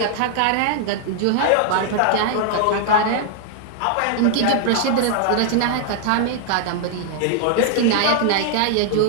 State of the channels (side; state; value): both; different; correlation 0.00